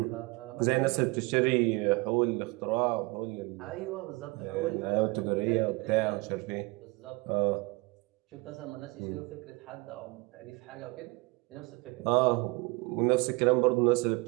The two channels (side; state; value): left; quieter; 25.6 dB